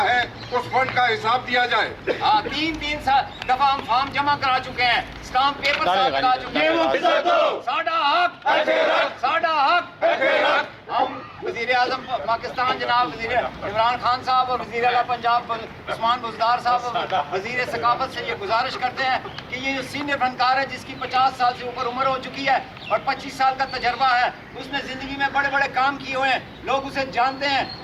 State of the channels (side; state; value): both; identical; correlation 1.00